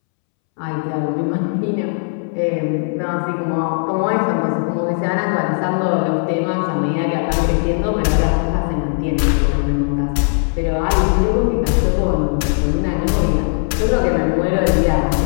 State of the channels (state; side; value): silent; right; 67 dB below the other